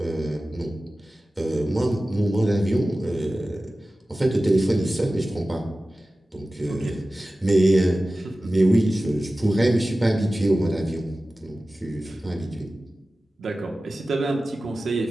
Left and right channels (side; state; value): both; normal; correlation 0.96